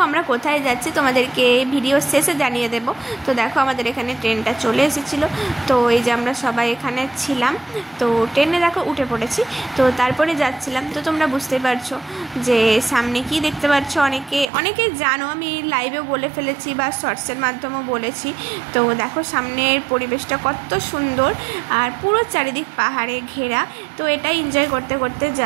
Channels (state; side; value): drops out; left; at 14.5 s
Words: আমরা কোথায় যাচ্ছি তোমাদেরকে ভিডিও শেষে জানিয়ে দেব। তো দেখো আমাদের এখানে ট্রেনটা চলে এসেছিলো। তো এই যে আমরা সবাই এখানে ছিলাম, তো ট্রেনে দেখো উঠে পড়েছি। তো তারপরে যাচ্ছিলাম। তো তোমরা বুঝতে পারছো যে সামনে কি দেখতে পাচ্ছ, অনেকে জানো, আমি লাইভেও বলে ফেলেছি বা শর্টসের মাধ্যমেও বলেছি। তো দেখো সামনের পরিবেশটা কত সুন্দর, আর পুরো চারিদিক পাহাড়ে ঘেরা। তো এটাই এনজয় করতে করতে